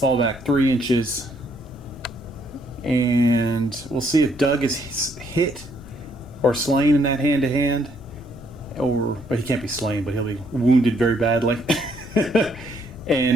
back 3 inches. And we'll see if Doug is hit or slain in that hand-to-hand. But he can't be slain, but he'll be wounded very badly.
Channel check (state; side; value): noise; left; rumble, 17 dB below the sound